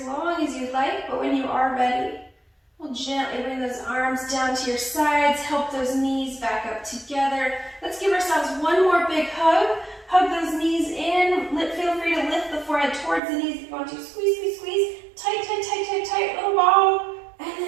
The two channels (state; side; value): drops out; left; at 13.2 s